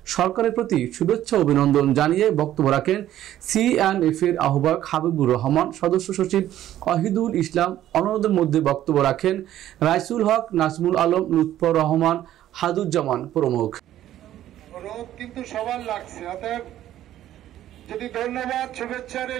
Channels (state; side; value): quieter; left; 12.6 dB